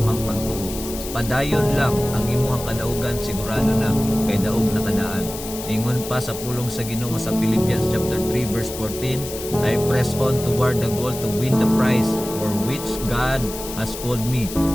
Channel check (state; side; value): noise; left; hiss, 10 dB below the sound